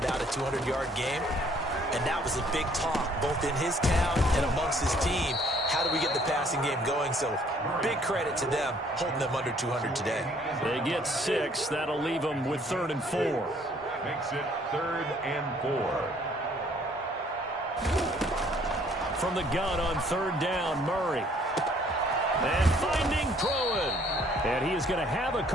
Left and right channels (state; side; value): normal; both; correlation 0.61